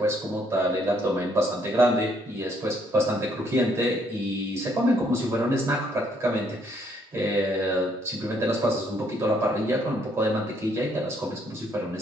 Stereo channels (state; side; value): normal; both; correlation 0.69